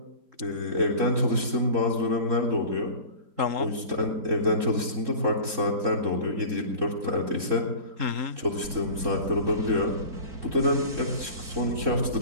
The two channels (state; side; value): late; left; 3.6 ms